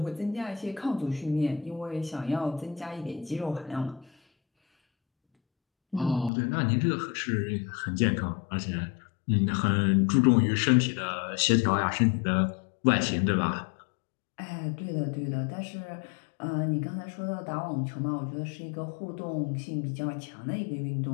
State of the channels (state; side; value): drops out; right; at 6.3 s